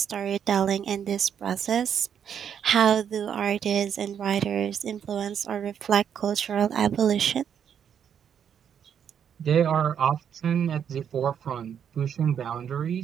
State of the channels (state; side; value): quieter; left; 8.3 dB